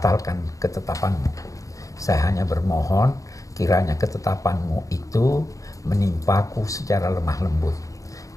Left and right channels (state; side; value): late; right; 0.16 ms